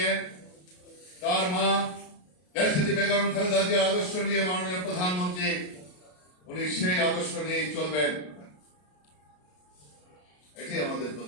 তার মা দেশনেত্রী বেগম খালেদা জিয়ার আদর্শ নিয়ে মাননীয় প্রধানমন্ত্রী উনি সেই আদর্শ নিয়েই চলবেন, এটাই আমাদের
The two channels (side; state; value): right; late; 33 ms